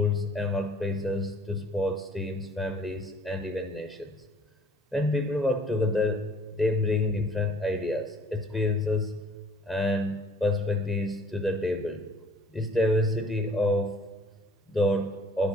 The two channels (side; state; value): both; normal; correlation 0.55